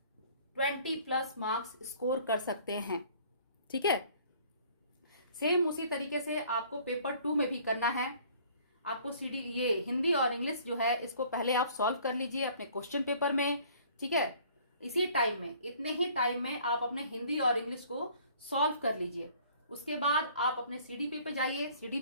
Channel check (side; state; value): both; inverted; correlation -0.55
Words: 20+ मार्क्स स्कोर कर सकते हैं। ठीक है, सेम उसी तरीके से आपको पेपर 2 में भी करना है। आपको ये हिंदी और इंग्लिश जो है इसको पहले आप सॉल्व कर लीजिए अपने क्वेश्चन पेपर में। ठीक है, इसी टाइम में, इतने ही टाइम में आप अपने हिंदी और इंग्लिश को सॉल्व कर लीजिए। उसके बाद आप अपने सीडीपी पे जाइए,